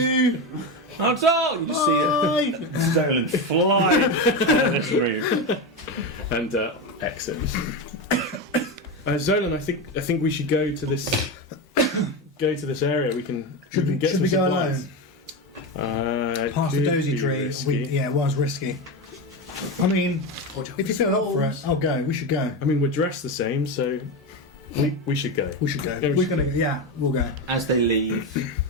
That's all! You see it. Stolen fly out of this room. And exit. Zolan, I think we should go to this area. We can get Should some we go supplies. alone? Past the dozy tree. It was risky. I mean, if you feel up for it, I'll go. We should go. I mean, we're dressed the same, so we should go. We should go. Yeah, We're gonna. Yeah, we'll go. As they leave,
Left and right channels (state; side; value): normal; both; correlation 0.16